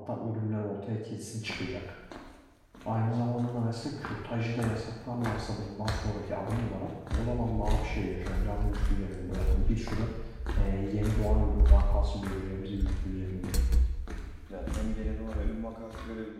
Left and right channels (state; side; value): identical; both; correlation 1.00